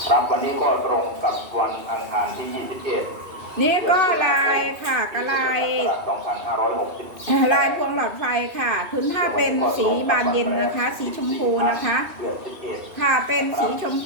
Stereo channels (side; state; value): left; late; 2.6 ms